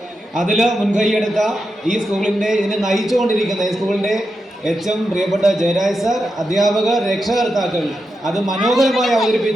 അതിൽ മുൻകൈയെടുത്ത ഈ സ്കൂളിൻ്റെ ഇതിനെ നയിച്ചുകൊണ്ടിരിക്കുന്ന ഈ സ്കൂളിൻ്റെ HM പ്രിയപ്പെട്ട ജയരാജ് സാർ, അധ്യാപകർ, രക്ഷകർത്താക്കൾ, അത് മനോഹരമായി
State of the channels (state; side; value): normal; both; correlation 0.87